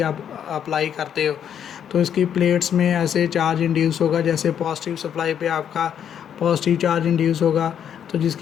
आप अप्लाई करते हो तो इसकी प्लेट्स में ऐसे चार्ज इंड्यूस होगा, जैसे पॉजिटिव सप्लाई पे आपका पॉजिटिव चार्ज इंड्यूस होगा तो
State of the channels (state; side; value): quieter; right; 8.9 dB